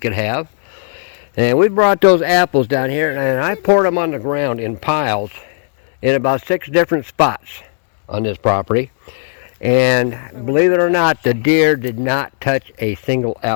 have. And we brought those apples down here, and I poured them on the ground in piles in about 6 different spots on this property. And believe it or not, the deer did not touch a single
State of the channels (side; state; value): right; silent; digital silence